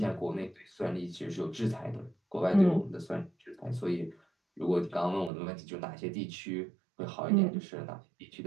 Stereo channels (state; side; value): drops out; left; at 5.3 s